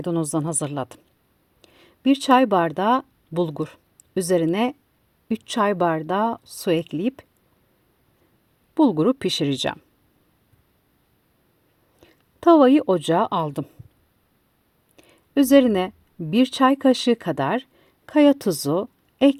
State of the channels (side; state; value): both; identical; correlation 1.00